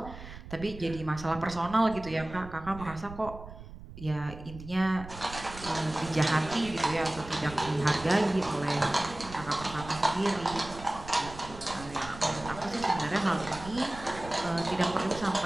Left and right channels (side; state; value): right; noise; rumble, 14 dB below the sound